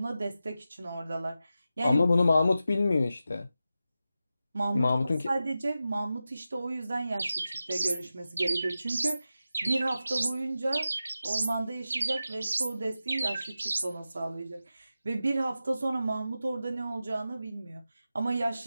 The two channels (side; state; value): both; inverted; correlation -0.92